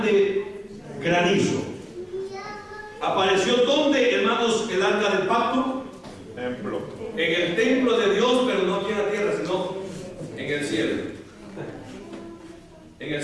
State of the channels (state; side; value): identical; both; correlation 1.00